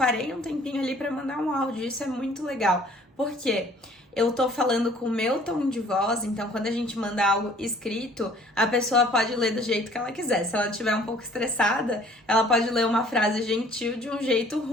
um tempinho ali para mandar um áudio. Isso é muito legal. Por quê? Eu tô falando com o meu tom de voz, então quando a gente manda algo escrito, a pessoa pode ler do jeito que ela quiser. Se ela estiver um pouco estressada, ela pode ler uma frase gentil de um jeito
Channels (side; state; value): both; normal; correlation 0.55